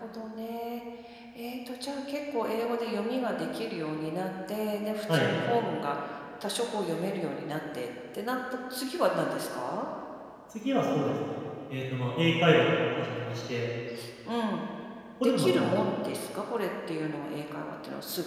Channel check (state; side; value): identical; both; correlation 1.00